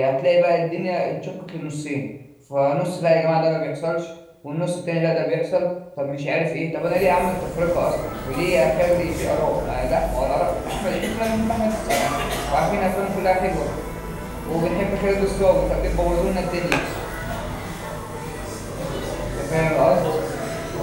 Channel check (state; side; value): identical; both; correlation 1.00